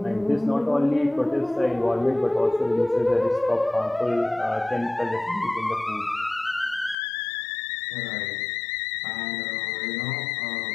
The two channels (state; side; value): drops out; right; at 7.0 s